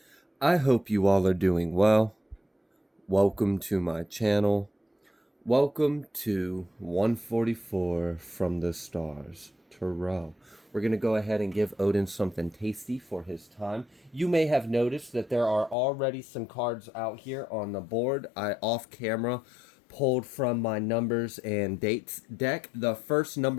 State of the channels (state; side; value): drops out; right; at 15.8 s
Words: I hope you all are doing well. Welcome to my channel. Welcome to 144 from the stars, Tarot. We're going to go ahead and give Odin something tasty for his time. You may have noticed that there are already some cards out here on the board. I off camera pulled from my numbers and dates deck. The first